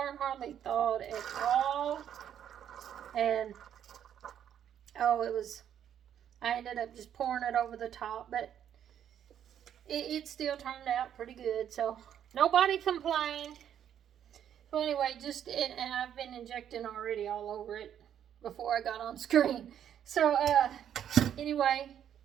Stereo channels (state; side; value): quieter; left; 9.6 dB